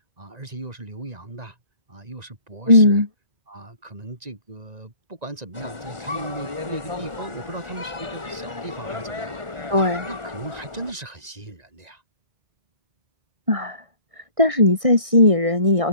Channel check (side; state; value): left; late; 1.6 ms